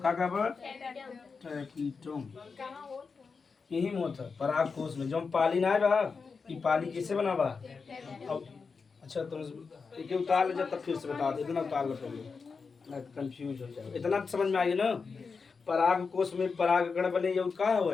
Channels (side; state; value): right; quieter; 5.0 dB